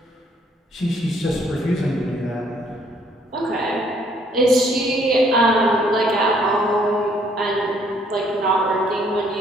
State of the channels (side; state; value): both; normal; correlation 0.65